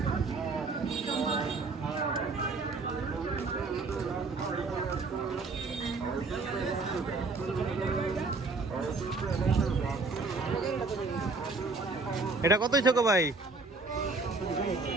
এটা কত হয়েছে গো ভাই?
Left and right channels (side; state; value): left; quieter; 3.7 dB